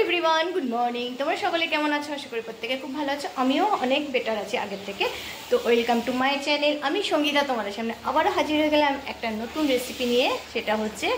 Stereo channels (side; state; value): both; identical; correlation 1.00